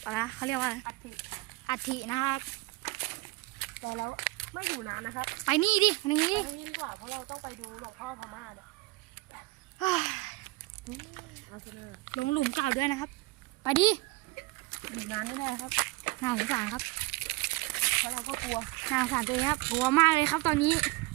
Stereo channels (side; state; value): left; quieter; 23.1 dB